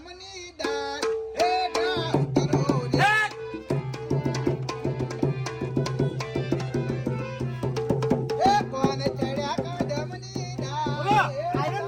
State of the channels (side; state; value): both; identical; correlation 1.00